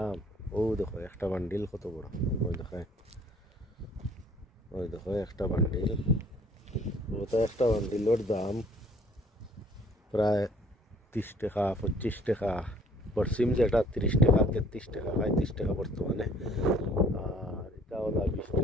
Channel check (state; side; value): normal; both; correlation 0.57